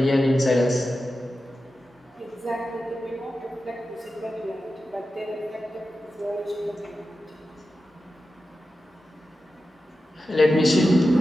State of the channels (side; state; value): both; normal; correlation 0.92